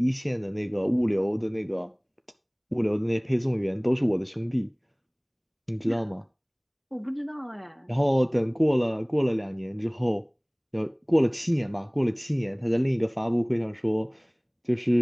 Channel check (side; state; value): both; identical; correlation 1.00